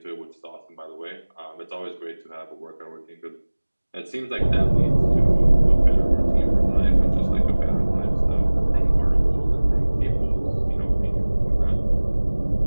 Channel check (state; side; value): inverted; both; correlation -1.00